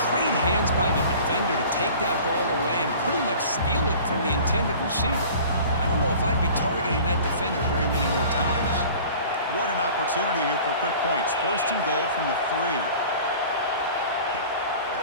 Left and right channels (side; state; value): both; inverted; correlation -0.44